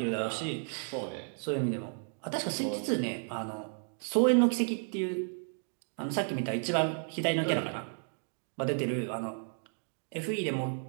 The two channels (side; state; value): left; silent; 56 dB below the other